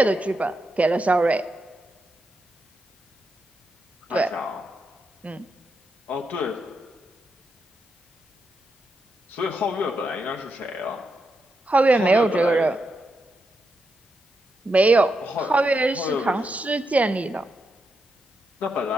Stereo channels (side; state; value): both; normal; correlation 0.84